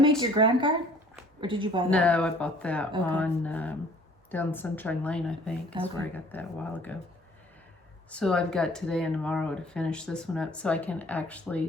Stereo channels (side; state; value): both; normal; correlation 0.54